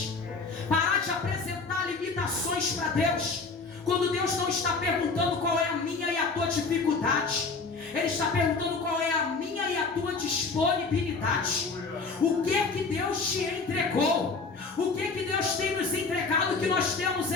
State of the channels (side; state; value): right; quieter; 4.3 dB